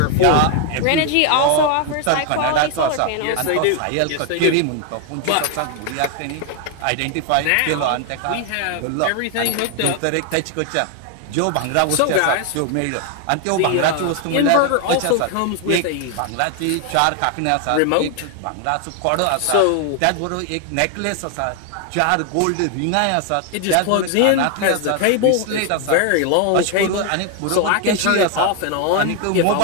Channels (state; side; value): different; both; correlation 0.00